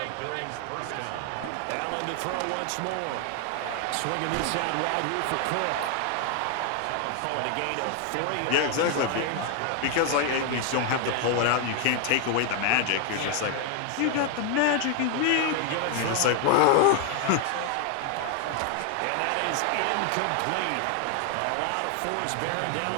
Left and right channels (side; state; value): both; different; correlation 0.00